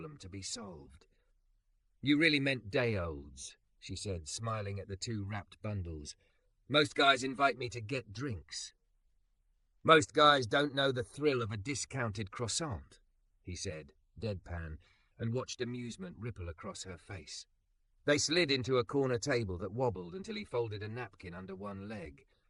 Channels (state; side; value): identical; both; correlation 1.00